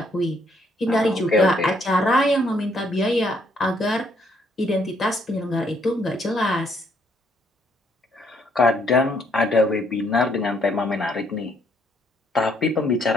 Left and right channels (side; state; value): both; normal; correlation 0.69